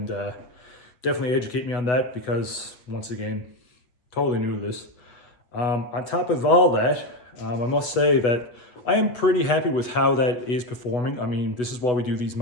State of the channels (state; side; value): late; right; 8.1 ms